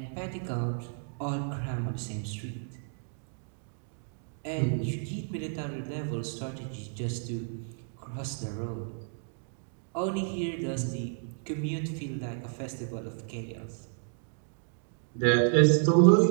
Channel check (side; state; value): left; silent; digital silence